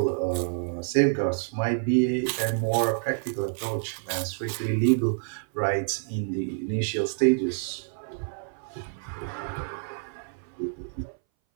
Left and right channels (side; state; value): left; silent; 59 dB below the other